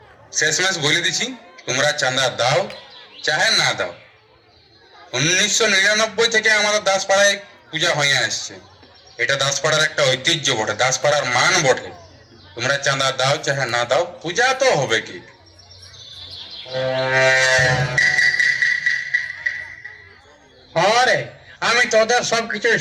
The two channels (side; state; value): both; identical; correlation 1.00